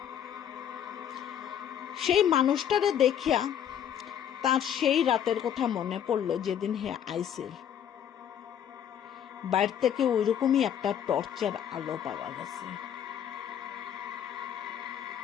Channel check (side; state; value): right; quieter; 9.4 dB